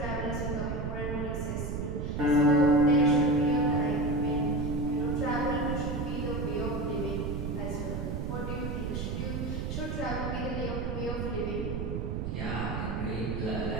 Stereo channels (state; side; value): noise; right; rumble, 3 dB below the sound